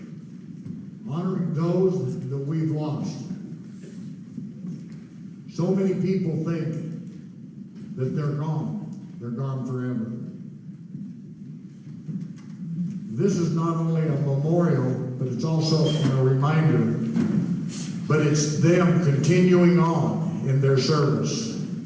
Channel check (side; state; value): both; identical; correlation 1.00